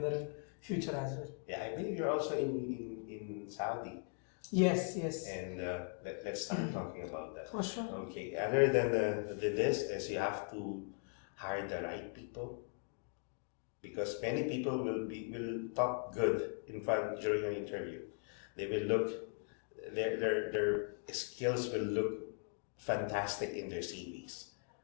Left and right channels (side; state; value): right; silent; 51 dB below the other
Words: in future as well. Yeah, I believe you're also in Saudi. Yes, yes, And let's start talking about that. for sure. Okay, other than this is you have to hire the right people, because many people will talk good in front during an interview. They will look their skills will look fantastic in their CVs.